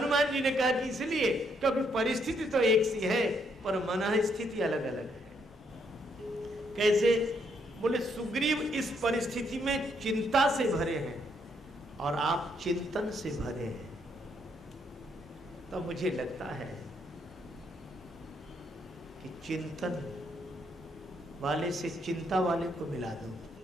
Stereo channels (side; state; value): both; normal; correlation 0.73